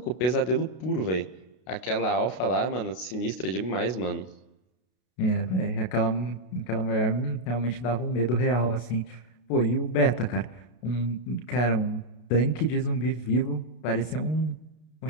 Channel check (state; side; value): late; right; 32 ms